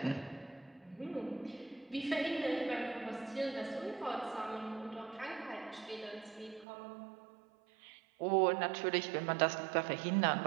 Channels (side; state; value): left; drops out; at 6.7 s